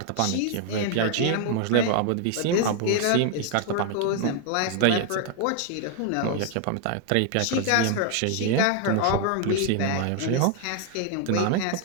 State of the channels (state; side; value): different; both; correlation 0.00